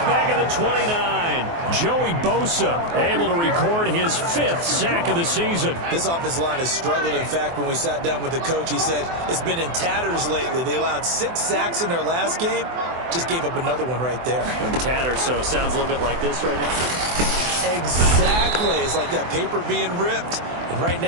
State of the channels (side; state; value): left; late; 24 ms